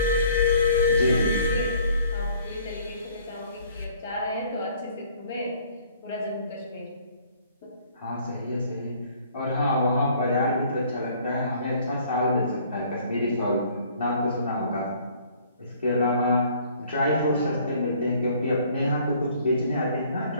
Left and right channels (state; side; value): inverted; both; correlation -0.57